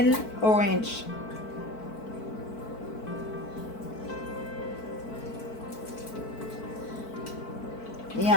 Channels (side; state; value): right; late; 4.5 ms